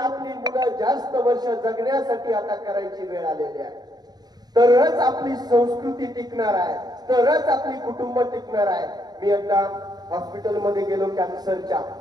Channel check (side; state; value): left; late; 0.19 ms